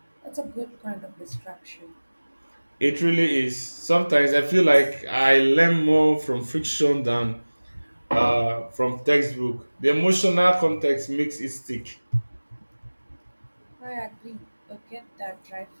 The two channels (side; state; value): both; inverted; correlation -1.00